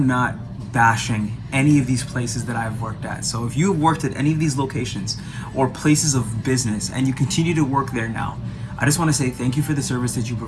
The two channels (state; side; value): identical; both; correlation 1.00